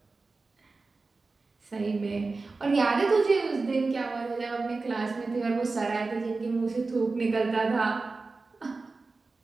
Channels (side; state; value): left; quieter; 3.8 dB